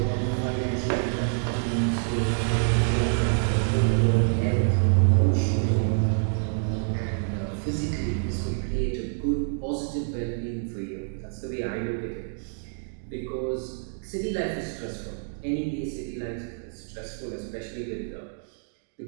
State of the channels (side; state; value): left; silent; digital silence